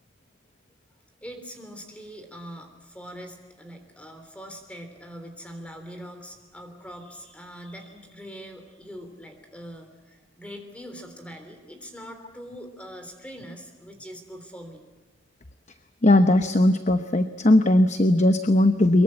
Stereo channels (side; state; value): both; normal; correlation 0.80